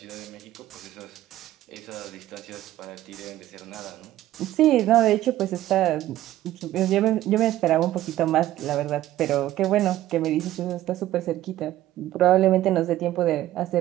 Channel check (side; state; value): left; quieter; 14.2 dB